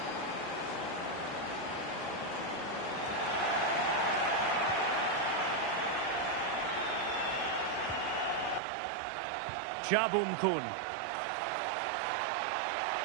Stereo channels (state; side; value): drops out; left; at 8.6 s